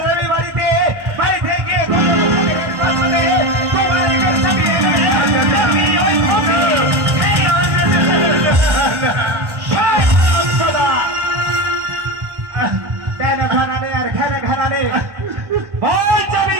যাবি বাড়িতে। বাড়িতে গিয়ে ঘানানে আর ঘানানে বল যাবি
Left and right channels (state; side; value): late; left; 1.1 ms